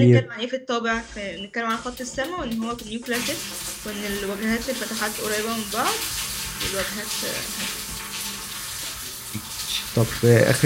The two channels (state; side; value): identical; both; correlation 1.00